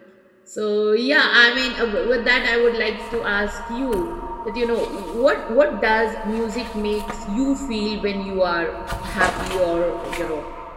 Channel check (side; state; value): both; identical; correlation 1.00